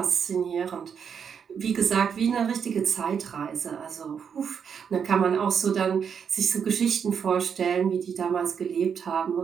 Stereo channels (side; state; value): left; quieter; 7.1 dB